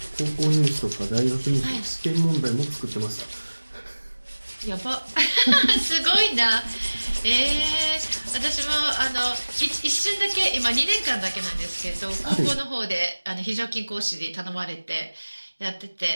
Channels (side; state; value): both; inverted; correlation -1.00